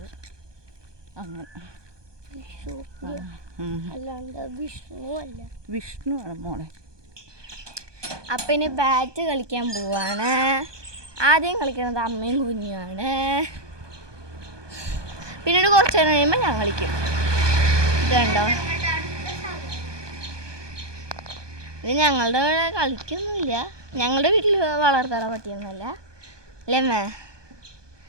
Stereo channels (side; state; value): left; late; 1.2 ms